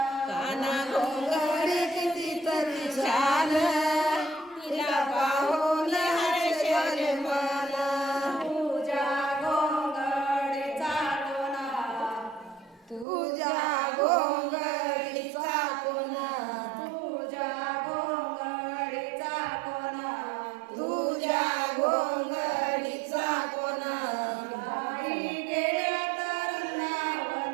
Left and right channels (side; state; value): left; drops out; at 13.1 s